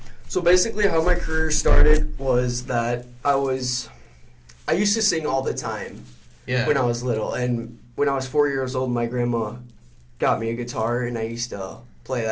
So basically how my career started was that I used to sing all the time when I was little. And when I was 4 years old, my grandma got me a guitar, and I used to play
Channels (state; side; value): identical; both; correlation 1.00